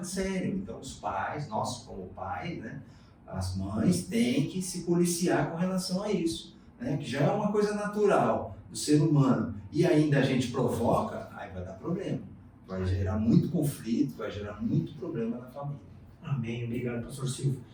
sério. Então, os pais, nós como pais, né, as mães têm que se policiar com relação a isso, né? Que já é uma coisa natural do ser humano, e ainda a gente provoca, aí vai dar problema. Vai gerar muito conflito, vai gerar muito problema na família. Amém. Obrigado, pastor Silvio.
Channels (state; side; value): identical; both; correlation 1.00